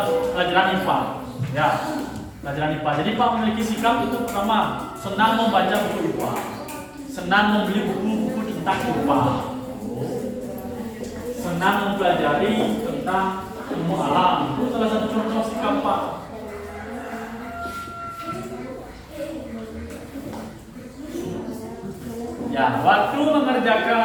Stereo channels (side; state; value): both; identical; correlation 1.00